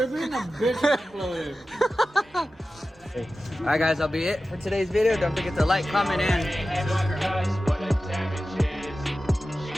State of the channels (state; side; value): normal; both; correlation 0.94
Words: being a bitch exploder. Alright guys, that'll be it for today's video. Don't forget to like, comment, and